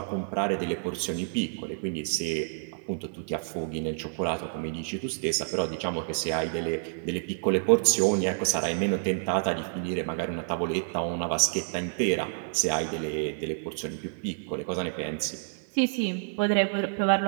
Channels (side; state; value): left; silent; 59 dB below the other